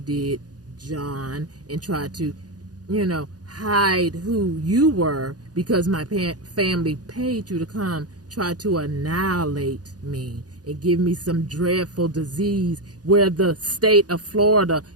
John, and try to, hide who you were because my family paid you to come try to annihilate me and give me some dreadful disease where the state of Florida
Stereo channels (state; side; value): late; left; 0.68 ms